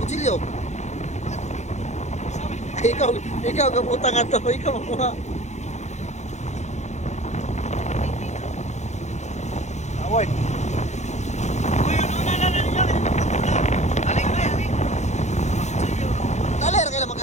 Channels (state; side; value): late; right; 0.33 ms